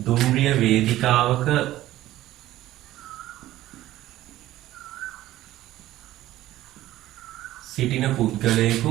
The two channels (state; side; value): quieter; left; 14.9 dB